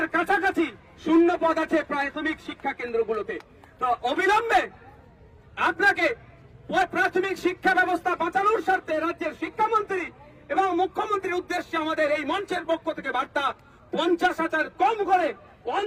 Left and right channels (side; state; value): both; identical; correlation 1.00